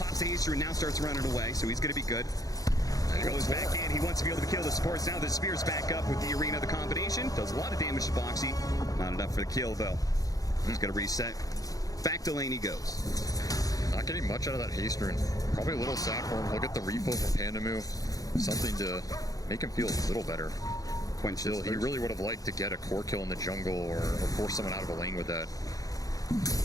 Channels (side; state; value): right; late; 0.17 ms